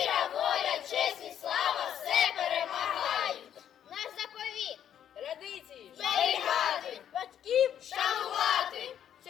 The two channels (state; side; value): quieter; right; 9.8 dB